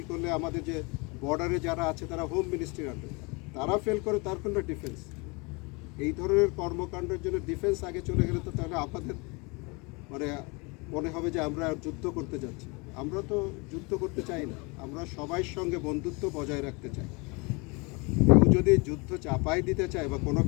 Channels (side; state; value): right; quieter; 28.7 dB